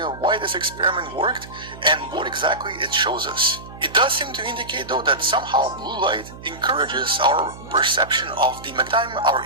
why this experiment worked and what exactly it shows us. It does seem to indicate though that somehow blue light encourages our perception of the magnetite. Our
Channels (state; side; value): noise; right; hum, 16 dB below the sound